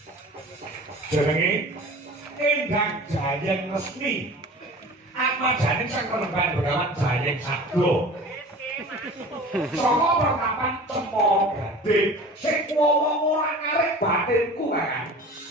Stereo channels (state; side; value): normal; both; correlation 0.40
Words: Jenenge Endang Jayeng Resmi. Atmajane sang penemban Begawan Jayeng Sabdo. Saka pertapan Cempaka Gading sing wong ora ngarep batinku Kakang.